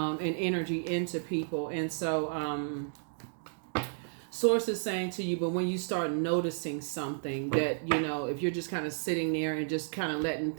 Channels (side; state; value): left; silent; digital silence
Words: energy into people. And so Source is saying to you, but when you start noticing something that if you're just kind of sitting there and just kind of letting